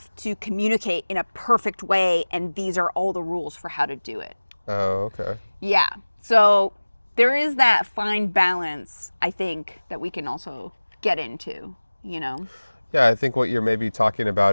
communicate in a perfect way, and these are all the rules for how to do it. Oh, okay. Yeah. So there is that fine balance, I think, that we can also get into, you know? Yeah, I think what you're maybe talking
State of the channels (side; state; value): both; inverted; correlation -1.00